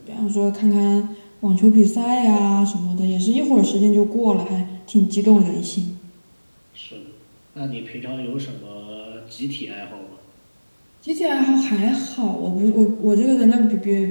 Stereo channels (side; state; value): both; inverted; correlation -1.00